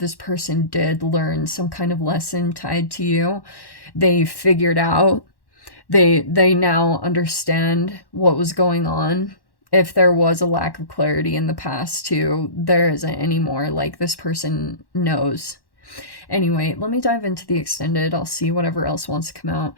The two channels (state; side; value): late; right; 1.1 ms